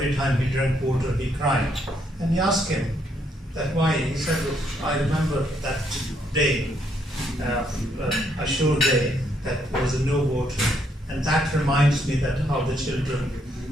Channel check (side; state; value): both; normal; correlation 0.73